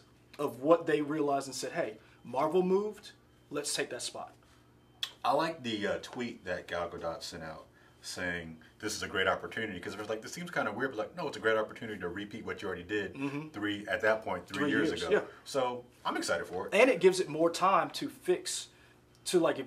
of what they realized and said, hey, Marvel moved, let's take that spot. I like the tweet that Gal Gadot sent out saying this is a great opportunity because it was like, this seems kind of weird, but like, no, it's a great opportunity to repeat what you already did 3 years ago. Yeah. So I'm excited for it. And it gives it more time to fix. To like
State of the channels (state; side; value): identical; both; correlation 1.00